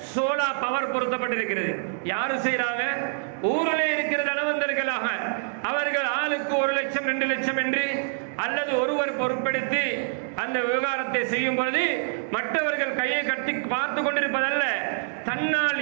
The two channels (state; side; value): silent; left; digital silence